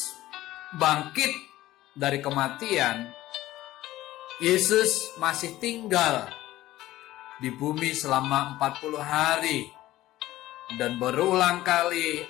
bangkit dari kematian, Yesus masih tinggal di bumi selama 40 hari dan berulang kali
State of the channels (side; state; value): right; quieter; 15.6 dB